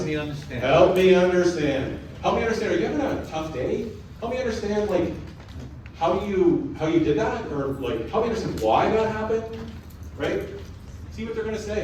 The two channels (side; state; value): both; identical; correlation 1.00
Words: me understand. Help me understand. Help me understand. Are you having a tough day? Help me understand, like, how you did that, or like help me understand why that happened, right? See what they're gonna